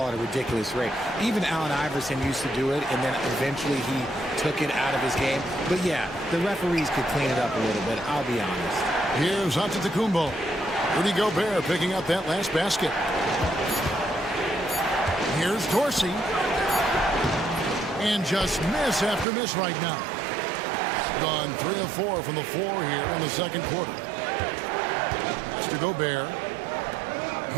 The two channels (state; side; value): drops out; left; at 19.2 s